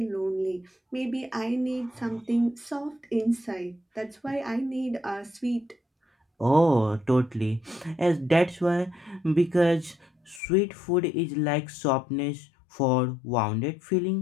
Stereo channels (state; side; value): drops out; right; at 10.4 s